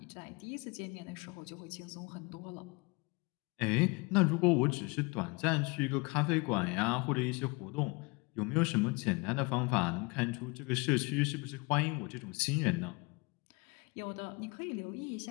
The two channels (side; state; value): right; quieter; 27.9 dB